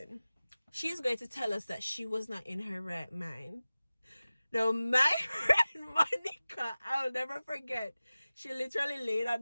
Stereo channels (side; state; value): both; inverted; correlation -0.97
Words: She's going to tell us that she was not in her right mind. Now, my friend Monica, I'll never forget, she literally laid on